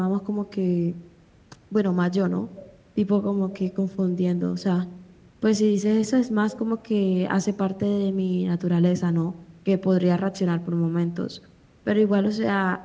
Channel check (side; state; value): both; identical; correlation 1.00